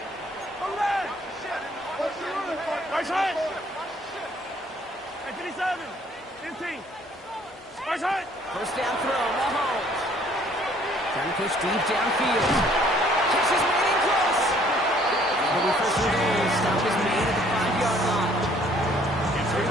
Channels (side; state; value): both; normal; correlation 0.60